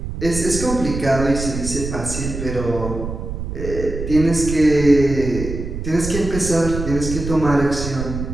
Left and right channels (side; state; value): right; noise; rumble, 6 dB below the sound